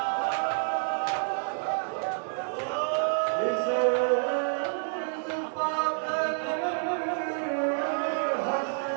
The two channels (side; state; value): left; silent; digital silence